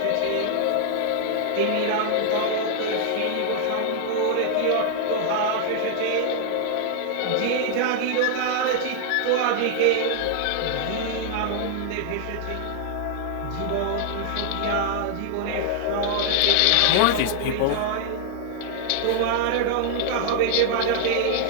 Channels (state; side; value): different; both; correlation -0.01